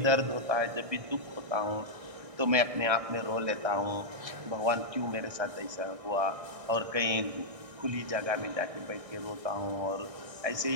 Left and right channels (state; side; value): late; left; 1.6 ms